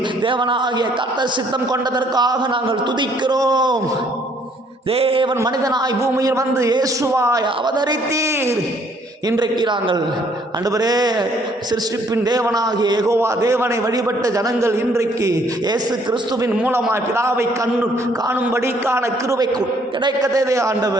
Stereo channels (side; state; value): both; normal; correlation 0.64